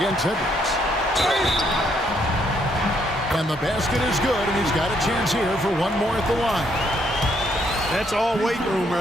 Edwards. And the basket is good, and he's got a chance here for one more at the line. That's all weight room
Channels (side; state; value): both; normal; correlation 0.71